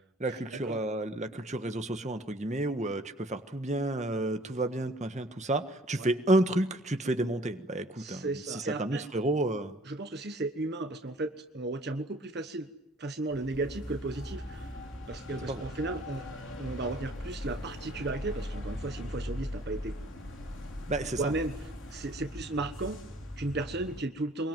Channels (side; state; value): both; normal; correlation 0.54